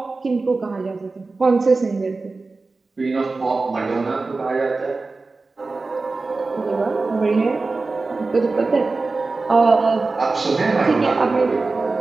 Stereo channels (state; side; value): quieter; left; 3.7 dB